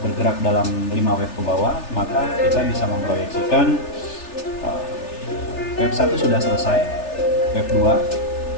dalam 5 wave ke bawah, maka kita bisa memproyeksikan wave 1 sudah selesai, wave 2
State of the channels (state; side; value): late; right; 3.4 ms